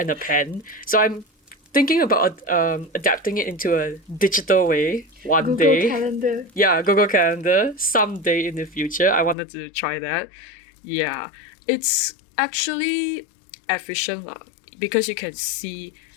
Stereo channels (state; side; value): drops out; right; at 9.3 s